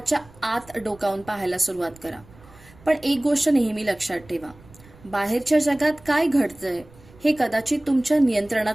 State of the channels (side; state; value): right; noise; rumble, 24 dB below the sound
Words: आत डोकावून पाहायला सुरुवात करा. पण एक गोष्ट नेहमी लक्षात ठेवा, बाहेरच्या जगात काय घडतंय हे कदाचित तुमच्या